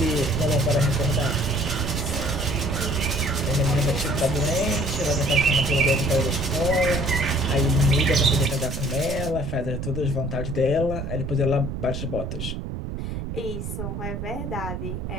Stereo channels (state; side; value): noise; right; rumble, 5 dB below the sound